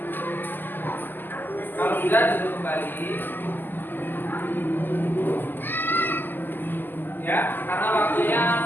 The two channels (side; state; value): right; late; 0.090 ms